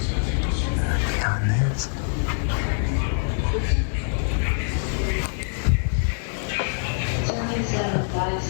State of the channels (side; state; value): right; silent; digital silence